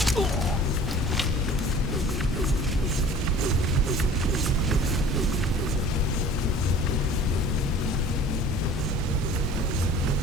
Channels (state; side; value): normal; both; correlation 0.46